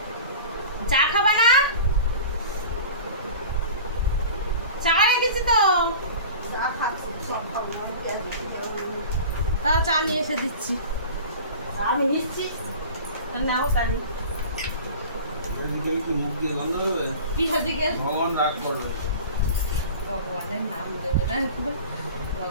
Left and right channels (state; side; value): inverted; both; correlation -0.37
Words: চা খাবা না? চা রেখেছি তো, তাও চা নিয়ে এসে দিচ্ছি। আমি নিচ্ছি, নাও তাহলে। মুখ দিয়ে গন্ধ হবে, কি হদিকে ভগবান রাগ করবে। ভগবান